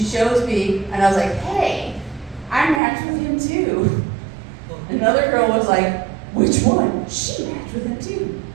shows me, and I was like, hey, I matched with him too. Another girl was like, which one? She matched with him too.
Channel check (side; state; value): left; drops out; at 2.8 s